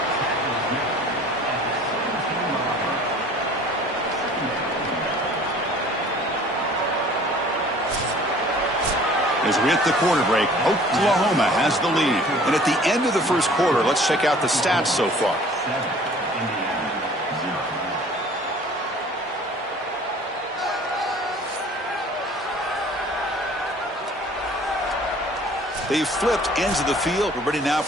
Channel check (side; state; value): both; normal; correlation 0.50